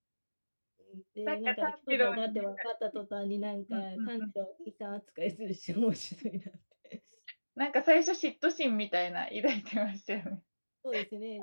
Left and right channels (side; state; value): both; inverted; correlation -1.00